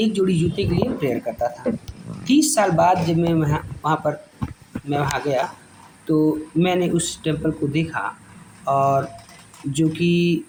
जोड़ी जूते के लिए प्रेयर करता था। 30 साल बाद जब मैं वहाँ गया, तो मैंने उस टेम्पल को देखा, और जो कि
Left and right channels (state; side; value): identical; both; correlation 1.00